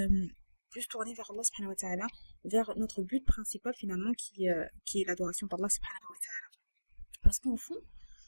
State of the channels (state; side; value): inverted; both; correlation -1.00